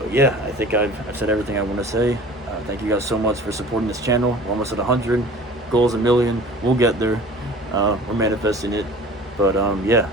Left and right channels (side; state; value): both; normal; correlation 0.43